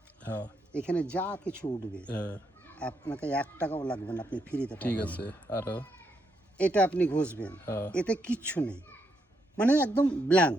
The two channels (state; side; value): normal; both; correlation 0.78